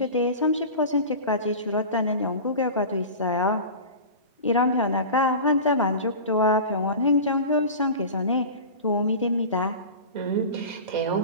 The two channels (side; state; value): both; inverted; correlation -0.32